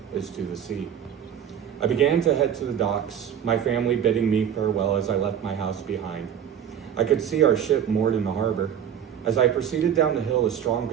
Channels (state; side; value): quieter; left; 9.0 dB